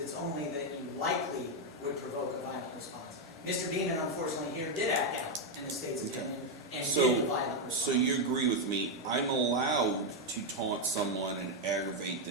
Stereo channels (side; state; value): both; normal; correlation 0.04